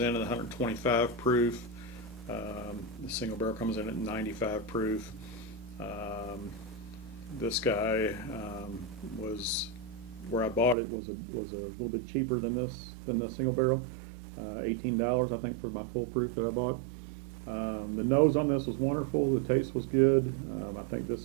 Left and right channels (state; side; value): drops out; left; at 10.8 s